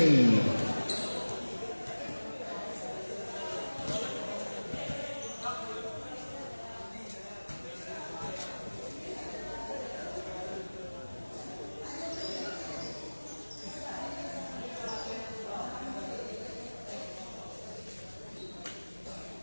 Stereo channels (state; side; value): inverted; both; correlation -1.00